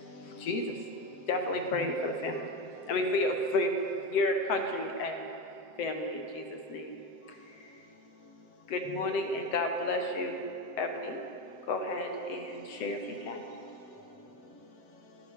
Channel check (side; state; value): right; late; 7.8 ms